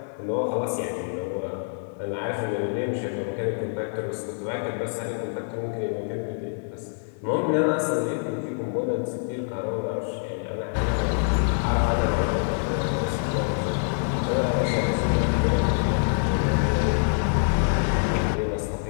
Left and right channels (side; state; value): right; silent; digital silence